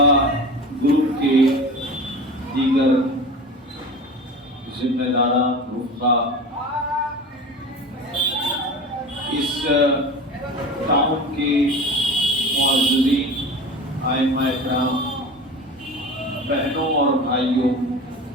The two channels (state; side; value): normal; both; correlation 0.34